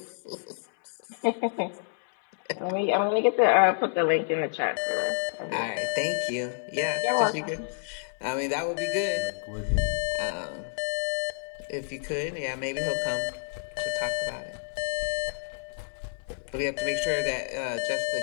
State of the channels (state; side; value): silent; right; digital silence